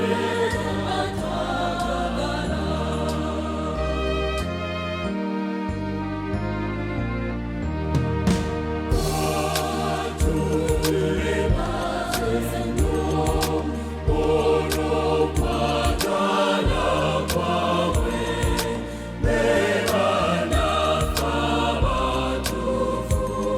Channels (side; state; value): both; identical; correlation 1.00